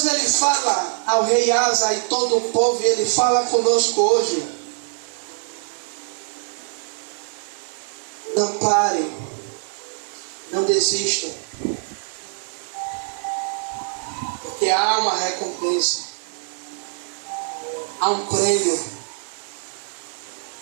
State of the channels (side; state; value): left; silent; 60 dB below the other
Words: ele fala ao rei Asa e todo o povo, e ele fala conosco hoje. Não parem, não desistam, porque há uma recompensa, há um prêmio.